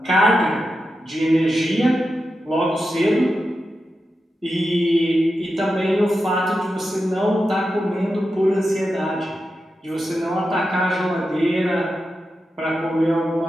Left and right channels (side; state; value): both; normal; correlation 0.89